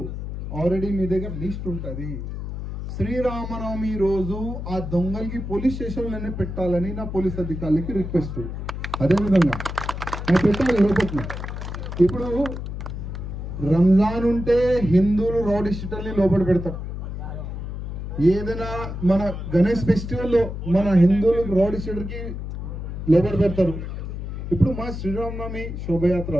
ఆల్రెడీ మీ దగ్గర లిస్ట్ ఉంటుంది. శ్రీరామనవమి రోజు ఆ దొంగలకి పోలీస్ స్టేషన్లోనే పెట్టాలని నా పోలీస్ అధికారులకి రిక్వెస్ట్. అదేవిధంగా పెట్టాలి లోపల. ఇప్పుడు రంజాన్ ఉంటే హిందువులు రౌడీ షీటర్ని లోపల పెడతారు. ఏదైనా మన గణేష్ ఫెస్టివల్లో మన హిందువులు రౌడీ షీటర్కి లోపల పెడతారు. ఇప్పుడు మా శ్రీరామనవమి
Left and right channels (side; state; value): left; noise; hum, 6 dB below the sound